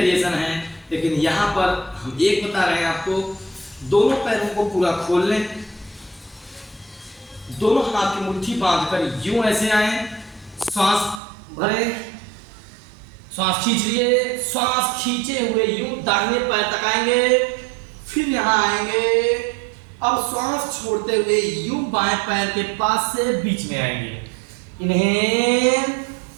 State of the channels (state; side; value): drops out; left; at 11.2 s